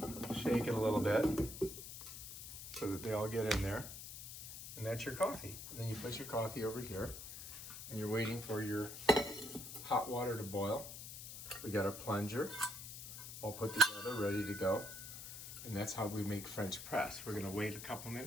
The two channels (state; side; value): noise; left; hiss, 10 dB below the sound